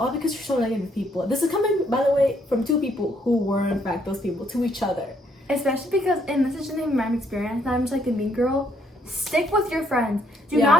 because you're so negative people. This is coming, by the way, from two people who were, in fact, those people to each other. Especially because, and this is just my experience, and I'm just like the mean girl, stick with your friends. Do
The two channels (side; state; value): both; normal; correlation 0.70